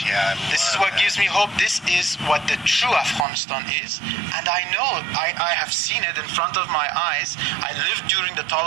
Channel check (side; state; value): left; drops out; at 3.2 s